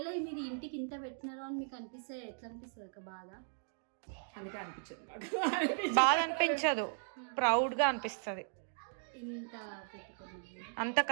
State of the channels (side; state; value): left; silent; digital silence